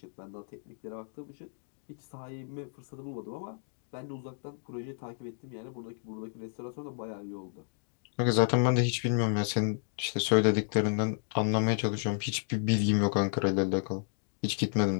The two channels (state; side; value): silent; right; digital silence